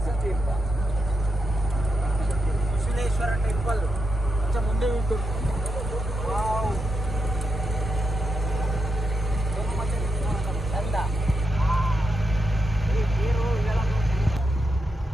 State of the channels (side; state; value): both; normal; correlation 0.85